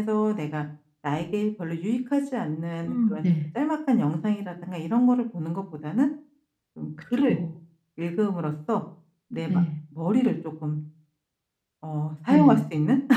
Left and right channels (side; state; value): both; identical; correlation 1.00